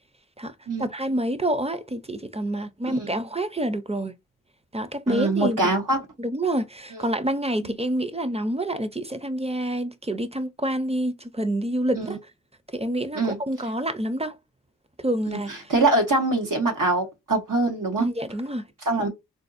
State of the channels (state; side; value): normal; both; correlation 0.45